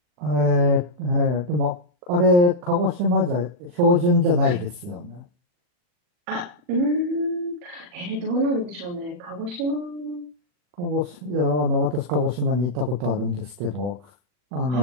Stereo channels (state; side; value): late; left; 40 ms